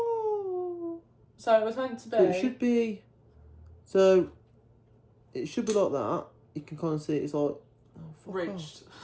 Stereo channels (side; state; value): both; identical; correlation 1.00